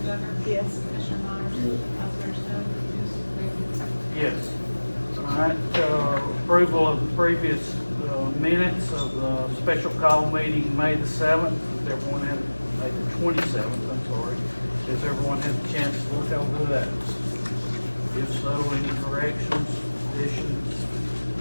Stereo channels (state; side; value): inverted; both; correlation -1.00